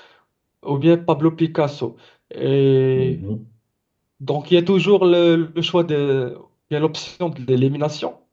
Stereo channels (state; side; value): identical; both; correlation 1.00